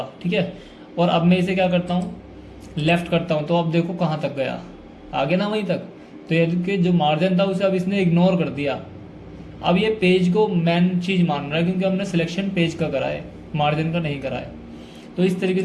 ठीक है, और अब मैं इसे क्या करता हूँ, लेफ्ट करता हूँ, तो अब देखो कहाँ तक गया, आगे ना वहीं तक। तो ये कि जो मार्जिन था उसे अब इसने इग्नोर कर दिया। अब ये पेज को मेन चीज़ मान रहा है क्योंकि हमने सिलेक्शन पेज का करा है, मार्जिन का नहीं करा है। तो इस तरीके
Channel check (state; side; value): identical; both; correlation 1.00